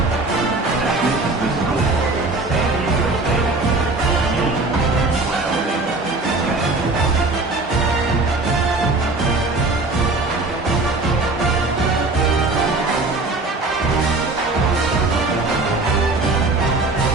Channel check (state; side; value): quieter; left; 3.3 dB